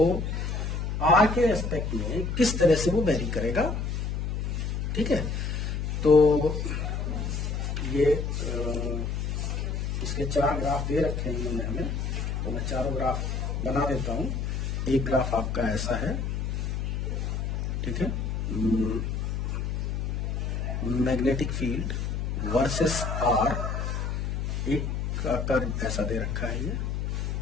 आर के एस्पेक्ट में किस तरह से वो वेरी करेगा। ठीक है, तो ये इसके 4 ग्राफ दे रखे हैं इन्होंने हमें, तो मैं चारों ग्राफ बना देता हूं। एक ग्राफ आपका ऐसा है, ठीक है, मैग्नेटिक फील्ड वर्सेस आर, एक का कर्व ऐसा दे रखा है ये,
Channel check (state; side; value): noise; left; hum, 1 dB below the sound